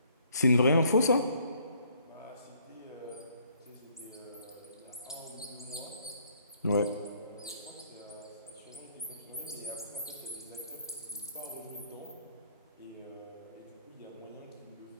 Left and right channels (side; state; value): both; inverted; correlation -0.65